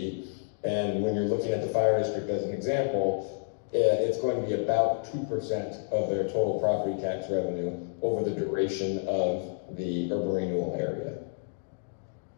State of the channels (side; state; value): right; silent; digital silence